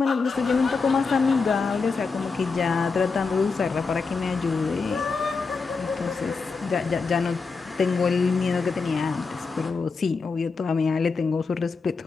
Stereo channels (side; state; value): right; quieter; 4.6 dB